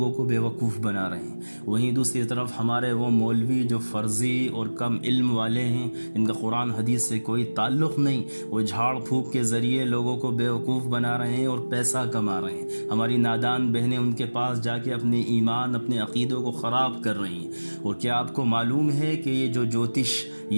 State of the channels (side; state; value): both; inverted; correlation -1.00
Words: کو بیوقوف بنا رہے ہیں، وہیں دوسری طرف ہمارے وہ مولوی جو فرضی اور کم علم والے ہیں، ان کا قرآن حدیث سے کوئی تعلق نہیں، وہ جھاڑ پھونک کے ذریعے لوگوں کو بیوقوف بنا رہے ہیں اور پیسہ کما رہے ہیں۔ ہماری نادان بہنیں ان کے پاس جا کے اپنے ایمان، اپنے عقیدوں کو خراب کر رہی ہیں۔ اور کیا آپ کو معلوم ہے کہ یہ جو جوتش،